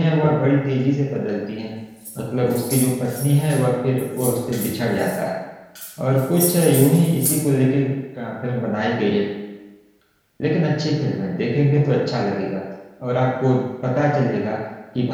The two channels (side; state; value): both; identical; correlation 1.00